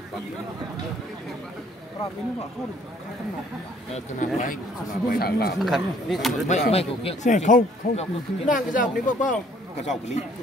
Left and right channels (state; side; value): normal; both; correlation 0.60